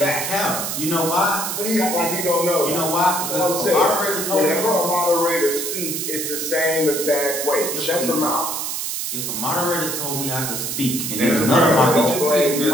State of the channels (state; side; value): noise; right; hiss, 3 dB below the sound